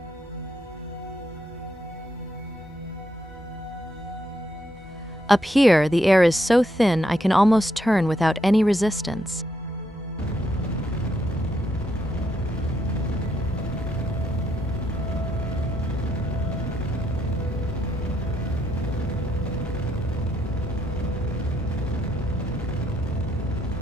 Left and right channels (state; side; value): normal; both; correlation 0.77